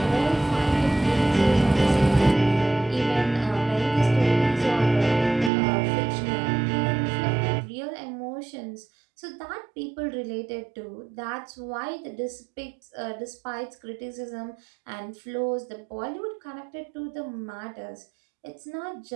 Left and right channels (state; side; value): drops out; left; at 5.5 s